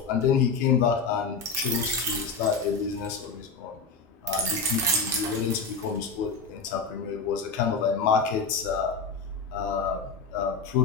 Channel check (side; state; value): right; quieter; 4.7 dB